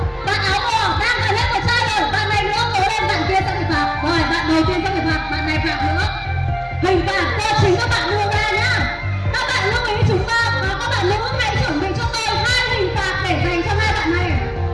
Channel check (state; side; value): identical; both; correlation 1.00